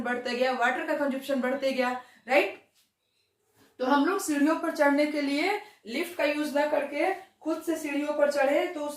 बढ़ता गया, वाटर का कंजप्शन बढ़ते गया, राइट। तो हम लोग सीढ़ियों पर चढ़ने के लिए लिफ्ट का यूज ना करके खुद से सीढ़ियों पर चढ़े तो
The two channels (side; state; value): both; identical; correlation 1.00